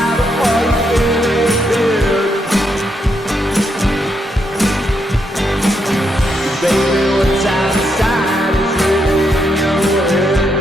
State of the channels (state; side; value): normal; both; correlation 0.79